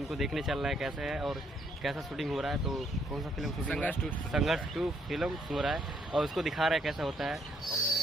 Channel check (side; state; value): both; normal; correlation 0.70